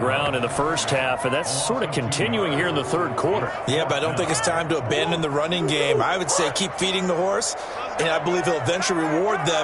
in the first half, and that's sort of continuing here in the 3rd quarter. Yeah, but I don't think it's time to abandon the running game. I would say keep feeding the horse, and I believe he'll eventually reward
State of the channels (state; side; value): identical; both; correlation 1.00